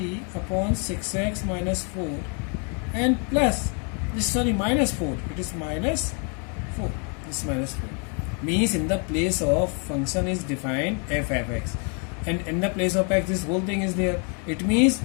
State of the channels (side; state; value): right; quieter; 38.0 dB